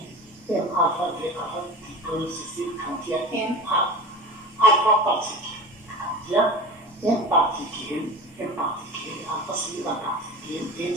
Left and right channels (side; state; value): both; normal; correlation 0.32